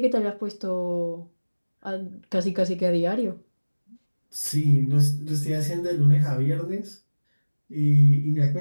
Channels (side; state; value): both; inverted; correlation -1.00